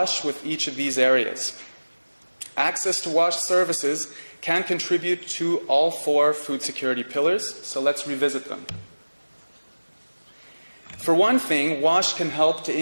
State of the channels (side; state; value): both; inverted; correlation -1.00